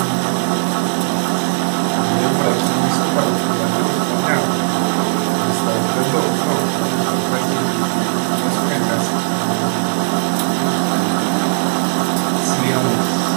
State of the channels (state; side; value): silent; left; 57 dB below the other